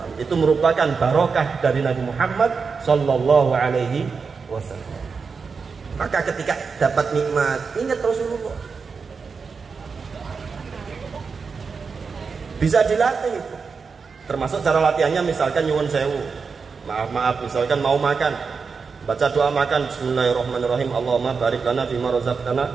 Itu merupakan barokah dari Nabi Muhammad sallallahu alaihi wasallam. Maka ketika dapat nikmat, ingat Rasulullah. Bisa dilatih itu. Termasuk cara latihannya misalkan nyuwun sewu. Maaf, misalkan mau makan, baca doa makan bismillahirrahmanirrahim. Allahumma barik lana fima razaqtana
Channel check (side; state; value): left; quieter; 5.2 dB